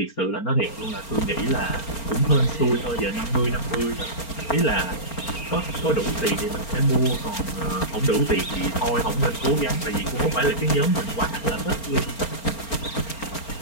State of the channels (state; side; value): late; right; 4.4 ms